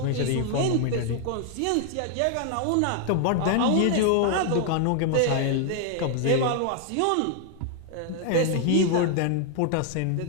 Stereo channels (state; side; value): different; both; correlation 0.00